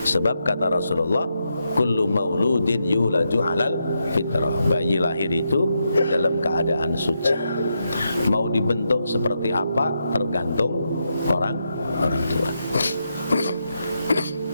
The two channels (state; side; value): inverted; both; correlation -0.83